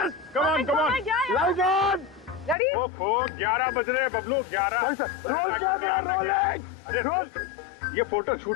कम on come on, light on. Ready? ओहो 11 बज रहे हैं बबलू, 11। Roll camera rolling. अरे रोल, ये फोटो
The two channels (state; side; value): drops out; right; at 2.6 s